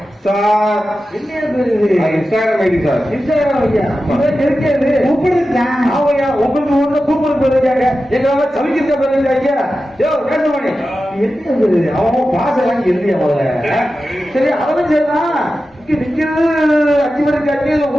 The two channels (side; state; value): both; normal; correlation 0.93